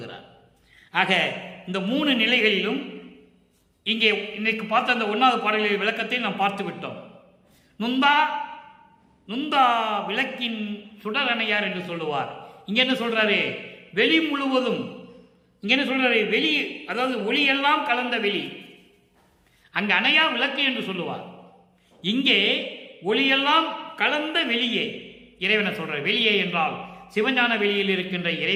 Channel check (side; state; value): both; identical; correlation 1.00